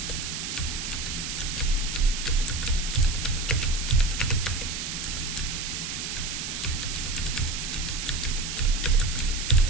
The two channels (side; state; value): right; noise; hiss, 4 dB below the sound